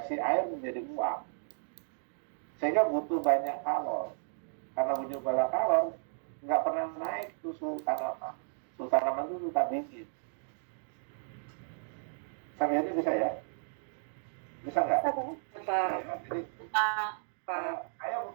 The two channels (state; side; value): silent; left; digital silence